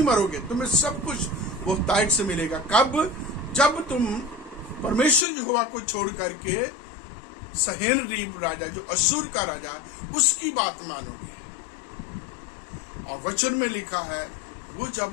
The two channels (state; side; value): drops out; right; at 5.2 s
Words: मरोगे, तुम्हें सब कुछ बहुतायत से मिलेगा। कब? जब तुम परमेश्वर यहोवा को छोड़ करके सहेनरीब राजा, जो असूर का राजा, उसकी बात मानोगे। और वचन में लिखा है वो